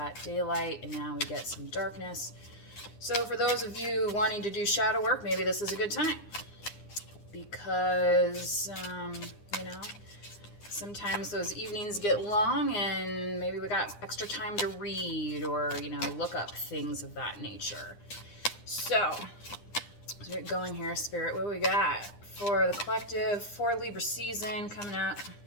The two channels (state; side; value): late; right; 9.8 ms